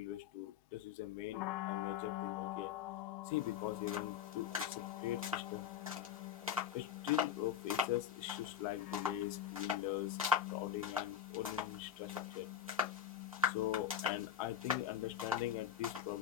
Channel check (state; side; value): quieter; right; 9.4 dB